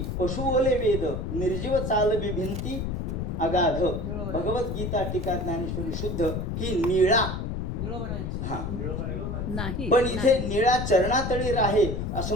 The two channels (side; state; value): left; noise; rumble, 3 dB below the sound